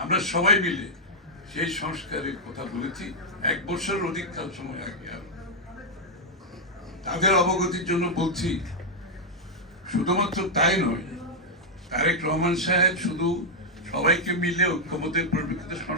আমরা সবাই মিলে সেই সংস্কারের কথা বলেছি 1 বছরের অধিক কাল সময় আগে। তাদের অবগতির জন্য বলছি, শুধুমাত্র তাই নয়, তারেক রহমান সাহেব শুধু সবাইকে মিলে ঐক্যমতের পরিপ্রেক্ষিতে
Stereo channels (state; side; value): normal; both; correlation -0.04